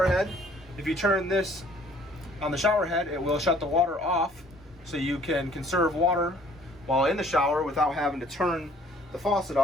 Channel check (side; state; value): both; normal; correlation 0.57